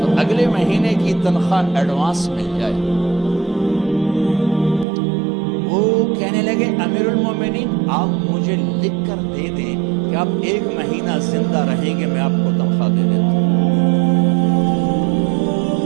اگلے مہینے کی تنخواہ ایڈوانس مل جائے. وہ کہنے لگے امیر المومنین آپ مجھے لکھ کر دے دیں کہ آپ 1 مہینہ زندہ رہیں گے، میں آپ کو تنخواہ دے دیتا ہوں.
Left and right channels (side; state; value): left; drops out; at 4.9 s